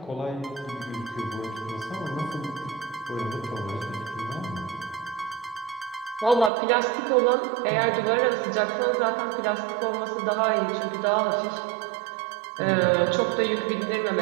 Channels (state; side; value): drops out; left; at 6.5 s